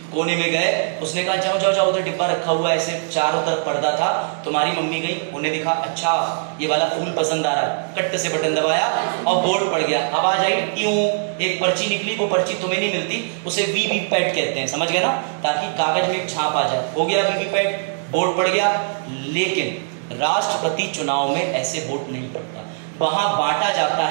कोने में गए, उसने कहा जाओ जाओ जाओ, उधर डिब्बा रखा हुआ है, ऐसे चारों तरफ पर्दा था। तुम्हारी मम्मी गई, उन्हें दिखा अच्छा ये वाला फूल पसंद आ रहा है, कट से बटन दबाया और बोर्ड पड़ गया। आवाज आई क्यों, एक पर्ची निकली, वो पर्ची तुम्हें नहीं मिलती, उसे वीवीपैट कहते हैं, समझ गए ना? ताकि कागज में एक छाप आ जाए, हो गया वीवीपैट, बोर्ड पड़ गया। लेकिन राष्ट्रपति चुनाव में ऐसे वोट नहीं पड़ता, वहां बांटा जाता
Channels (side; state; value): left; silent; digital silence